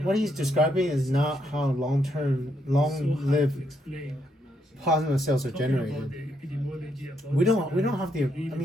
he's describing is not how long-lived to explain. plasma cells are Talking about generated. the epidemiology, about We don't have the. I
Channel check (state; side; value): normal; both; correlation 0.77